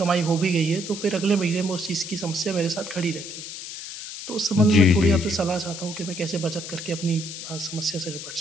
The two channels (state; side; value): noise; left; hiss, 9 dB below the sound